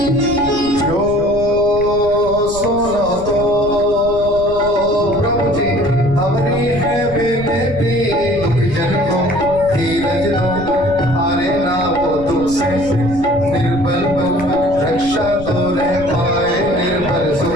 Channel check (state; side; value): noise; right; rumble, 12 dB below the sound